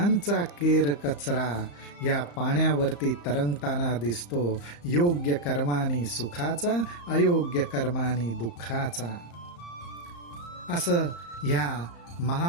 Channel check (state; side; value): late; right; 35 ms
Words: केर कचरा या पाण्यावरती तरंगताना दिसतो. योग्य कर्मानी सुखाचा, अयोग्य कर्मानी दुःखाचा. असं ह्या